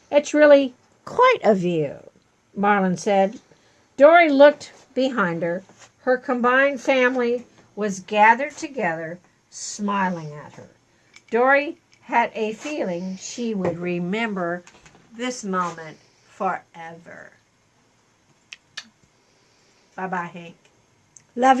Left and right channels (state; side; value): identical; both; correlation 1.00